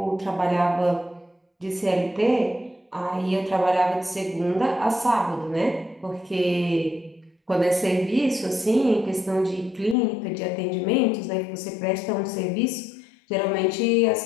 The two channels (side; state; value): right; drops out; at 10.0 s